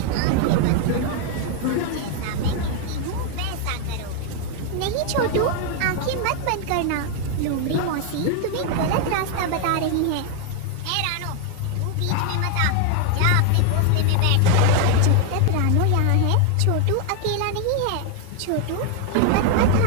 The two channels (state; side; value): different; both; correlation 0.00